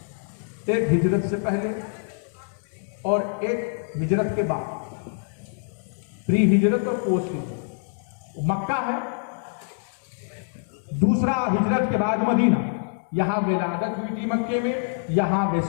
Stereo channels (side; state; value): right; silent; 61 dB below the other